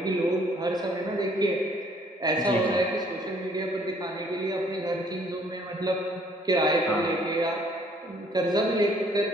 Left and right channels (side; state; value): both; normal; correlation 0.61